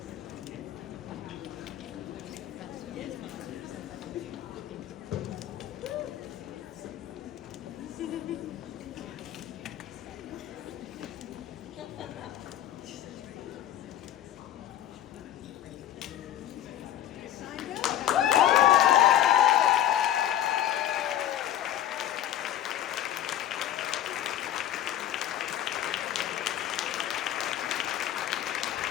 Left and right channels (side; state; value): right; quieter; 11.8 dB